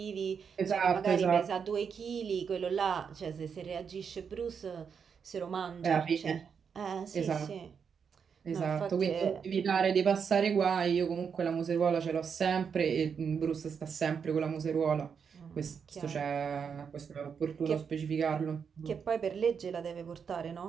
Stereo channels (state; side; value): quieter; left; 6.6 dB